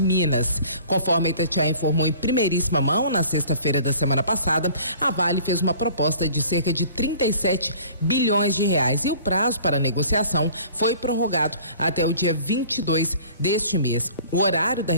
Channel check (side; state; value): both; inverted; correlation -0.48